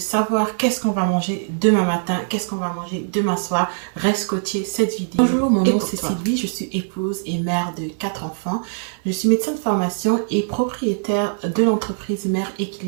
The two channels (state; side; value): silent; left; 60 dB below the other